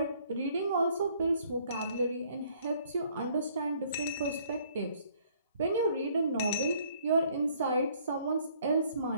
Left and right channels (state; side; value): inverted; both; correlation -0.62